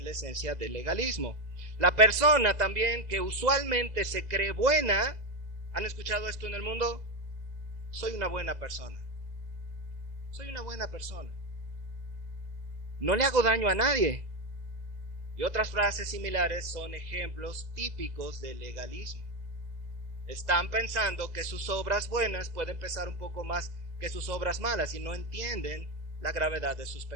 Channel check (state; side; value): late; left; 2.0 ms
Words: la esencia del legalismo. La persona también que usualmente se cree buena, ¿han escuchado esto en el mundo? Soy una buena persona. Soy una buena persona. No le hago daño a nadie. Y otras frases similares son ejemplos típicos del legalismo. Están pensando que sus obras buenas pueden pesar un poco más que sus obras malas y no entienden la gravedad de sus